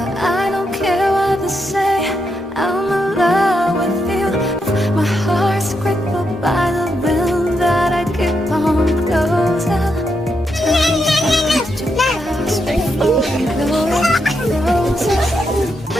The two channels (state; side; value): normal; both; correlation 0.81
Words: I don't care what they say. I'm in love with you. My heart's crippled by the wind that I keep on closing.